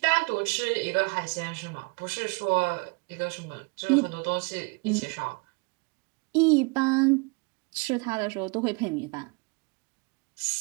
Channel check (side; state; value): left; quieter; 30.9 dB